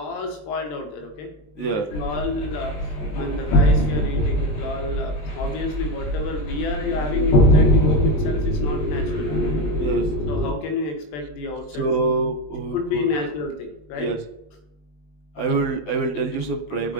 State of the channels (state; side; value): late; right; 20 ms